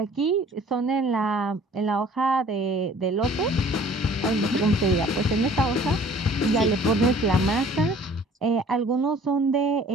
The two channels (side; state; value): both; normal; correlation 0.52